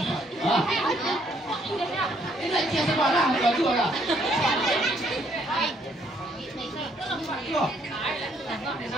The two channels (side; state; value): both; normal; correlation 0.68